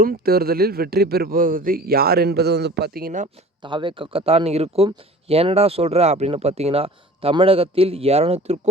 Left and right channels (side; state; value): both; normal; correlation 0.43